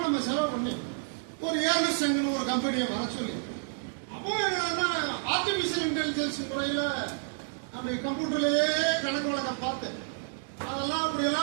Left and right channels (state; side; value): silent; left; digital silence